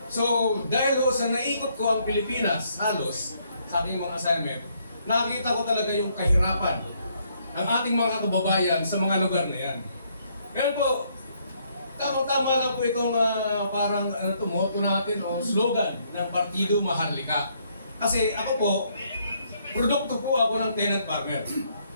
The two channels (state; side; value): inverted; both; correlation -0.70